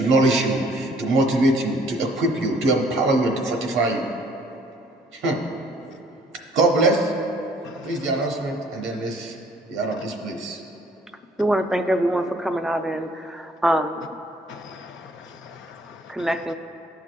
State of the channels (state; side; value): normal; both; correlation 0.59